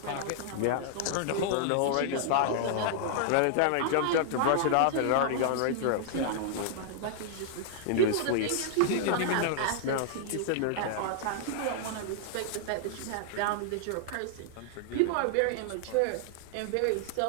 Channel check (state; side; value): different; both; correlation -0.01